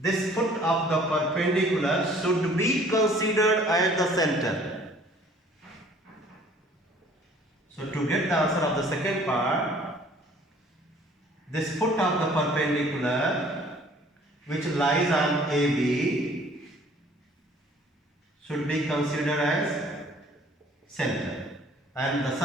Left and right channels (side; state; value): both; normal; correlation 0.55